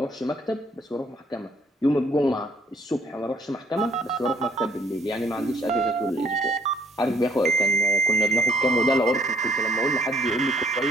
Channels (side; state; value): both; normal; correlation 0.63